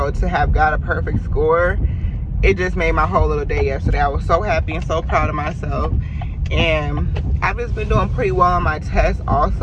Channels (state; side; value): identical; both; correlation 1.00